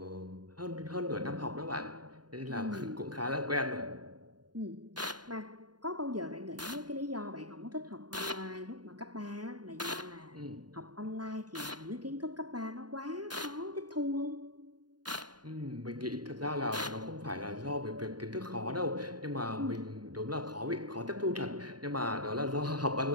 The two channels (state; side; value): late; left; 0.70 ms